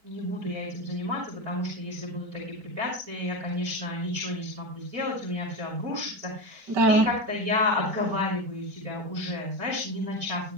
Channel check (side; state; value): left; late; 4.5 ms